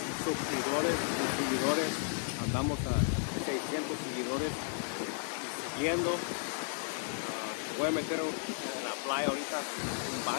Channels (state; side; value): silent; right; 55 dB below the other